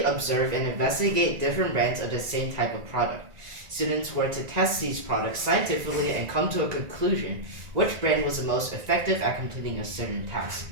observe and investigate different brands of the same type of product. Students were to test these products scientifically and come to a conclusion which brand was the most effective at completing a certain task.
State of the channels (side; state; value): left; late; 1.9 ms